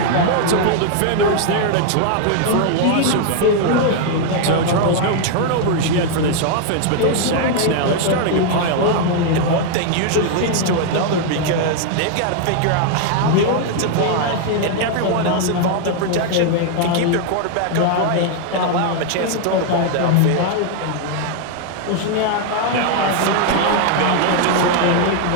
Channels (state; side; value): different; both; correlation 0.00